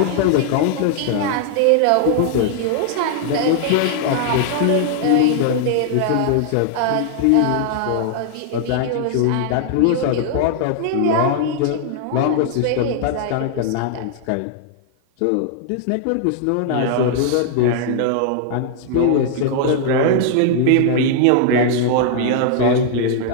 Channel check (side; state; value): both; different; correlation 0.00